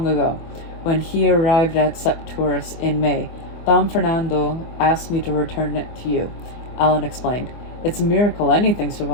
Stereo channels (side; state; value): right; late; 24 ms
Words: ago, when he arrived at Septours in May. Dom Fernando asked me to return it to you, Alan explained. It's a miracle anything